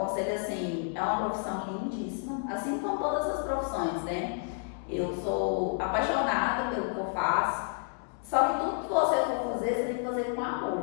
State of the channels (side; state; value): right; silent; 56 dB below the other